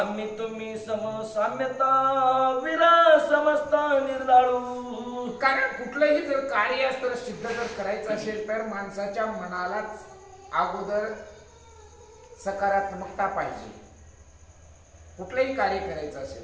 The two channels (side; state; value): both; identical; correlation 1.00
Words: तुम्ही समसाम्यता विरा समजता निर्दाळू. कारण कुठलंही जर कार्य असतं सिद्ध जर करायचं असेल तर माणसाच्या मनालाच अगोदर सकारात्मकता पाहिजे. कुठलंही कार्य करायचं